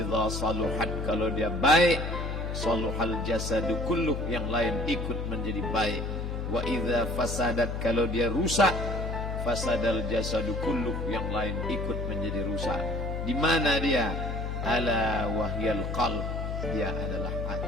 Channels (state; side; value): noise; left; hum, 3 dB below the sound